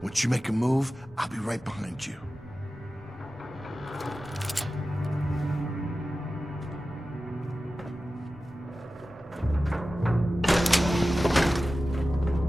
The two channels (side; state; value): both; normal; correlation 0.94